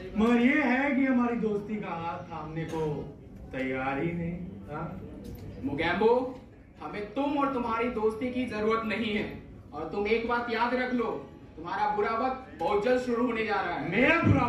मगर ये है कि हमारी दोस्ती का हाथ थामने को तैयार ही नहीं। हाँ मोगैम्बो, हमें तुम और तुम्हारी दोस्ती की जरूरत नहीं है। और तुम एक बात याद रख लो, तुम्हारा बुरा वक्त बहुत जल्द शुरू होने जा रहा है। मेरा बुरा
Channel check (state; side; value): identical; both; correlation 1.00